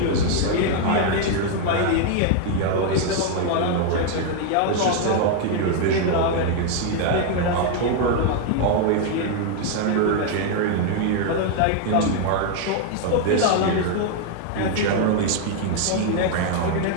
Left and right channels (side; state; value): both; different; correlation 0.01